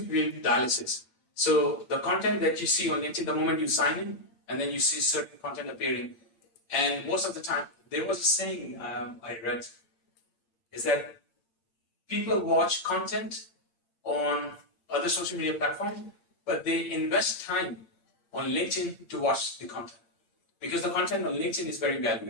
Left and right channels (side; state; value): right; late; 8.8 ms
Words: dialysis. So the content that you see on LinkedIn, the moment you sign in, and then you see certain content appearing. And most of the time, there was a saying I read, is that people watch content on other social media platforms, but they invest time on LinkedIn to watch the content, because the content on LinkedIn is very